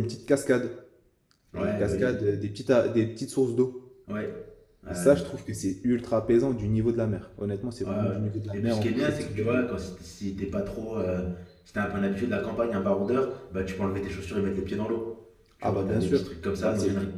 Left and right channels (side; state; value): both; identical; correlation 1.00